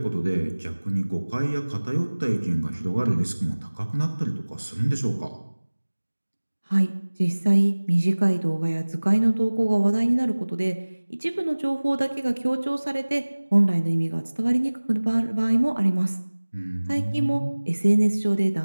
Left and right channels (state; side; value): inverted; both; correlation -1.00